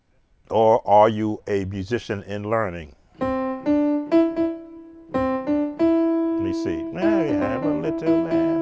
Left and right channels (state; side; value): identical; both; correlation 1.00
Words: Or are you a musician in learning? Let me see. Now we have a little lamb,